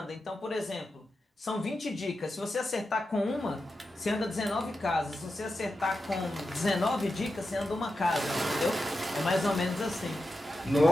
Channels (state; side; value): normal; both; correlation 0.90